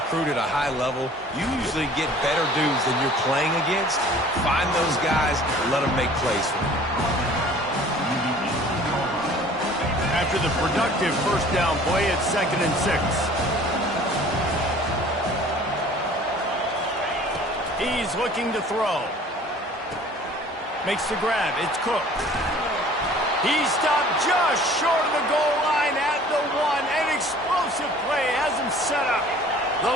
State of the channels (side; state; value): both; normal; correlation 0.49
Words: at a high level. You usually get better dudes than you're playing against. Find those guys, let them make plays for you. After the productive first down play, it's 2nd and 6. He's looking to throw. Makes the grab. It's Cook. He stopped just short of the goal line at the 1. An explosive play has him set up. The